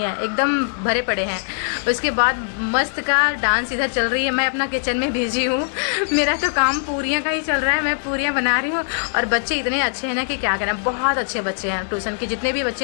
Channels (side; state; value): right; silent; digital silence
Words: है, एकदम भरे पड़े हैं। उसके बाद मस्त का डांस इधर चल रही है। मैं अपना किचन में बिजी हूँ, मेरा तो काम पूरियाँ का ही चल रहा है, मैं पूरियाँ बना रही हूँ। और बच्चे इतने अच्छे हैं ना कि क्या कहना, बहुत अच्छे बच्चे हैं। ट्यूशन के जितने भी बच्चे